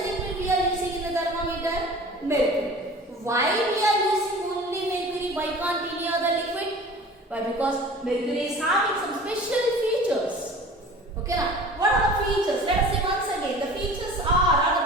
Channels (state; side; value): normal; both; correlation 0.42